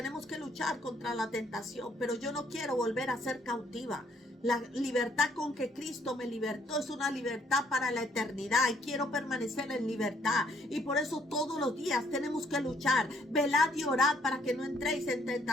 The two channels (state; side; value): normal; both; correlation 0.66